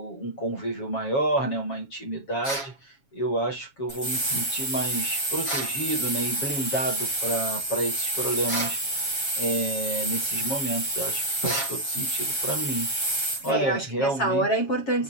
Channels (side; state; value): right; late; 7.3 ms